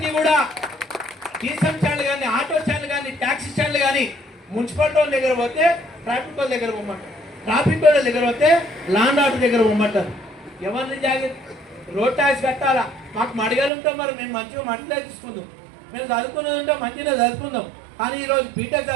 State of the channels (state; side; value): drops out; left; at 13.7 s